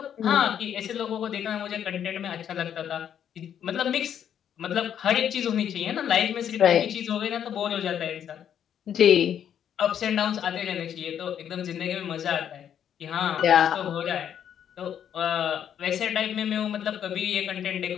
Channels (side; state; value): right; quieter; 9.2 dB